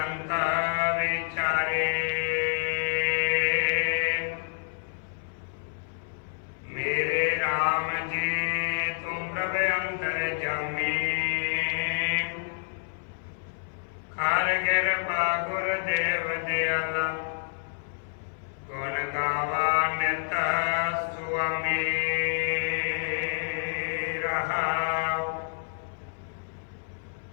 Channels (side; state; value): right; silent; 57 dB below the other